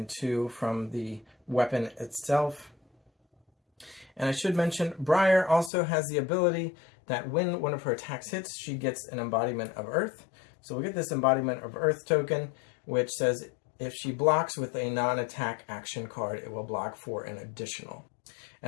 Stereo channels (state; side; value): drops out; right; at 5.7 s